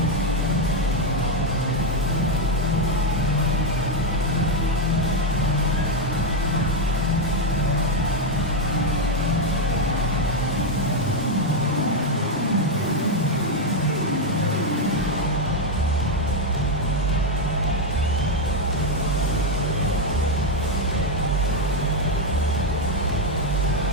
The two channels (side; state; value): both; normal; correlation 0.05